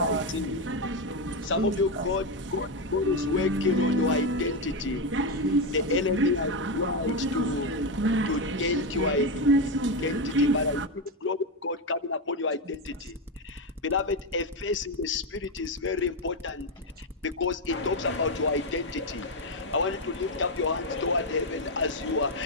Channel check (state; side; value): normal; both; correlation 0.08